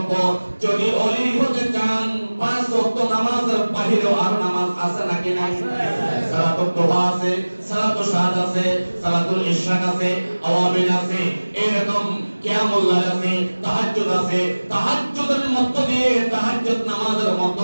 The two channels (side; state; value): both; inverted; correlation -1.00